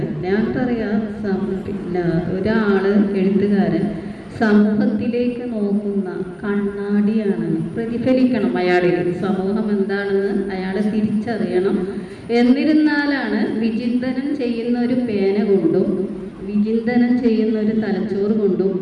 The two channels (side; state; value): both; identical; correlation 1.00